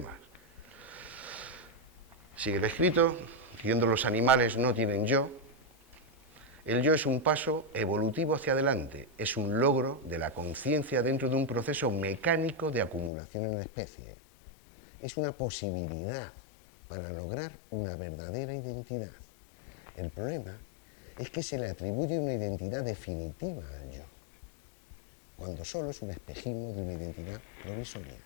Sigue el escrito, diciendo los animales no tienen yo. El yo es un paso evolutivo hacia adelante, es un logro de la conciencia dentro de un proceso mecánico de acumulación en la especie. Es una posibilidad para lograr una verdadera identidad. El problema es que se le atribuye una identidad definitiva al yo, cuando solo es un espejismo de una identidad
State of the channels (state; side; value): drops out; right; at 13.1 s